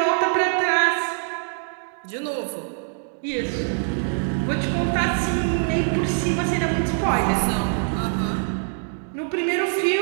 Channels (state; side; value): silent; left; 56 dB below the other